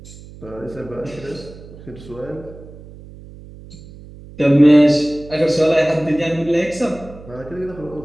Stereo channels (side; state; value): right; noise; hum, 18 dB below the sound